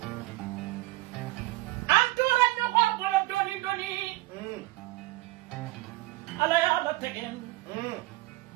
antora no ko bolo doni ala ya la tegen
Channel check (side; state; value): left; quieter; 19.9 dB